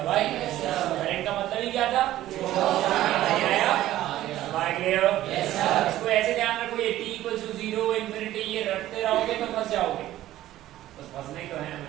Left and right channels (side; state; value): left; quieter; 14.2 dB